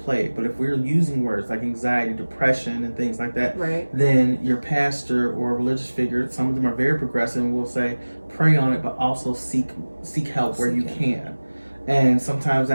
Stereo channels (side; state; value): both; inverted; correlation -1.00